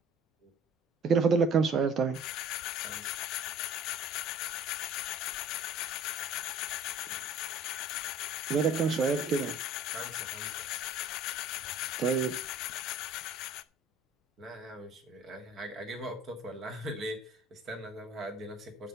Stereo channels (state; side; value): normal; both; correlation 0.49